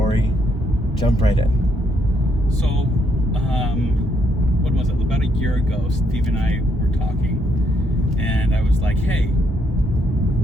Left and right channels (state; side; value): normal; both; correlation 0.73